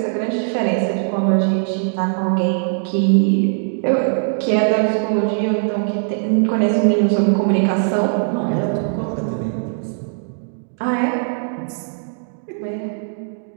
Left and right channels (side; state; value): left; silent; digital silence